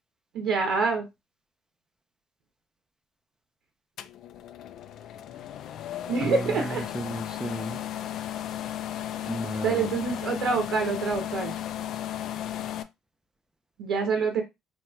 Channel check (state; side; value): normal; both; correlation 0.59